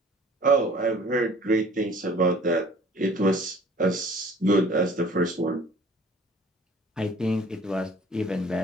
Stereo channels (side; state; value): both; normal; correlation 0.50